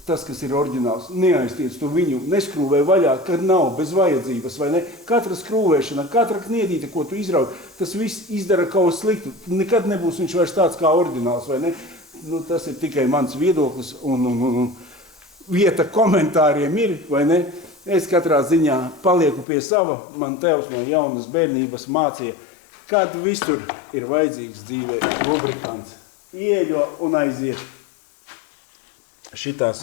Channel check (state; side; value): drops out; right; at 19.5 s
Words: tas, kas ir oriģināls, neaiztiec to viņu, neskrūvē vaļā, kad nav bez vajadzības, vai ne? Katra skrūvēšana, katra kniedīte, ko tu izrauj, tas viss izdara kaut sliktu. Nekad nebūs viņš vairs tāds kā oriģināls, vai ne? Nu, tas ir tikai mans viedoklis un vieta komentāriem ir, vai ne? Es katrā ziņā palieku pie sava, man tevs no jaunas bērnības mācīja, kad visur ir vajadzīgs dzīvē lubrikants. Ieļo un aiziet. Šitā